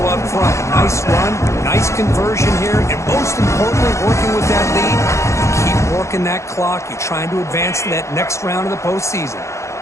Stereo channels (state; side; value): late; right; 0.14 ms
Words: up front. Nice run, nice conversion here, and most importantly, working with that lead, you keep working that clock. You're trying to advance to that next round of the postseason.